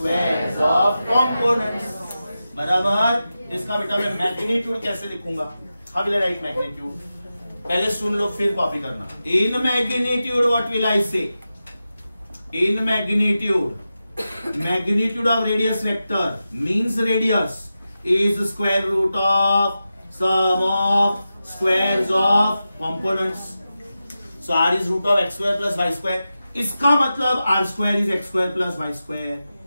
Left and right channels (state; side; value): inverted; both; correlation -0.92